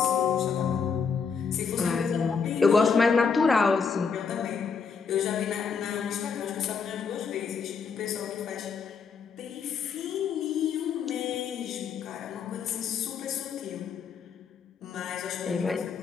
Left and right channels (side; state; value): right; quieter; 5.9 dB